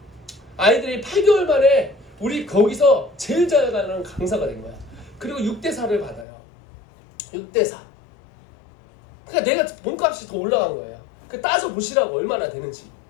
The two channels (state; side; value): drops out; right; at 6.2 s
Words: 아이들이 8개월 만에 우리 거기서 제일 잘 가는 강사가 된 거야. 그리고 6대4를 받아요. 6대4. 그러니까 내가 몸값이 더 올라간 거예요. 그 따져 보시라고 얼마나 되는지.